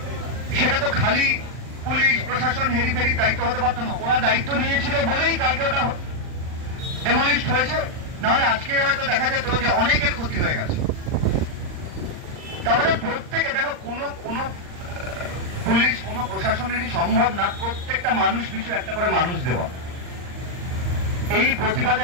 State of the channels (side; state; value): left; late; 39 ms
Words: সেটা তো খালি পুলিশ প্রশাসন হেরিফেরির দায়িত্ব হতে পারতো না। ওরা দায়িত্ব নিয়েছিল বলেই কালকে ওটা ডেমলিশড হয়েছে, নাহলে আজকে হয়তো দেখা যেত যে অনেকের ক্ষতি হয়ে গেছে। তাহলে প্রত্যেকে দেখো, কোনো পুলিশ, কোনো প্রশাসনেরই সম্ভব না প্রত্যেকটা মানুষ পিছু একটা করে মানুষ দেওয়া। এই